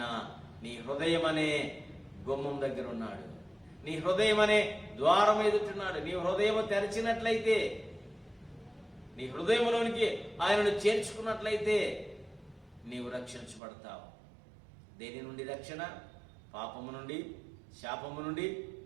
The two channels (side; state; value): left; drops out; at 13.6 s